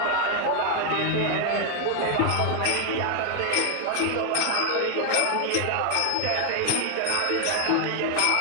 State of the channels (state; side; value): different; both; correlation 0.00